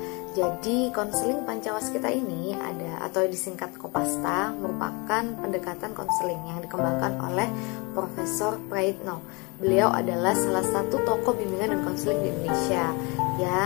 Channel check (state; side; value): quieter; right; 28.5 dB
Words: Jadi, konseling Pancawaskita ini ada atau disingkat Kopasta merupakan pendekatan konseling yang dikembangkan oleh Profesor Praitno. Beliau adalah salah satu tokoh bimbingan dan konseling di Indonesia